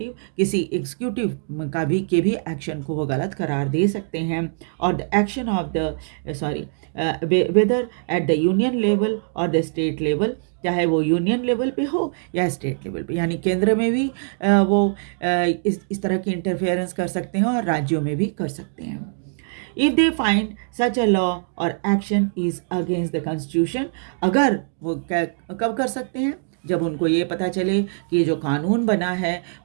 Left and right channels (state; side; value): silent; left; digital silence